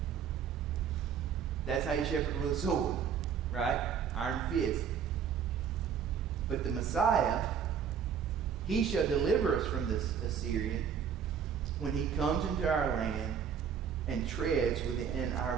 That's how you shepherd with a sword, right? Iron fist. But the Messiah, he shall deliver us from this Assyrian when he comes into our land and treads within our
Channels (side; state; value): left; quieter; 7.5 dB